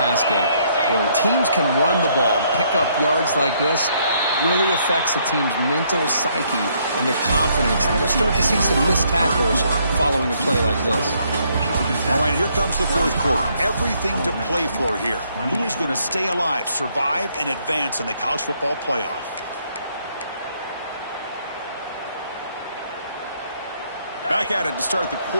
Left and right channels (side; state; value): both; inverted; correlation -0.70